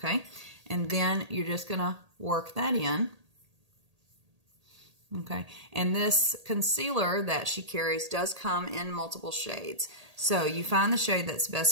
And then you're just going to work that in. Okay. And this concealer that she carries does come in multiple shades. So you find the shade that's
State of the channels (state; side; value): late; left; 1.8 ms